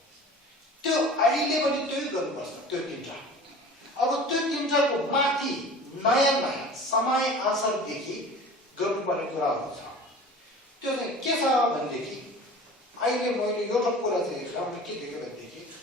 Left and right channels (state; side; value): normal; both; correlation 0.41